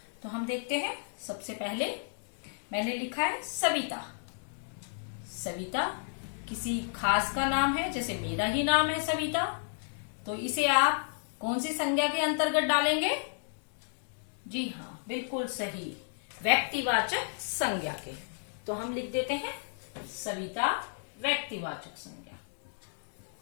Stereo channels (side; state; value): right; silent; digital silence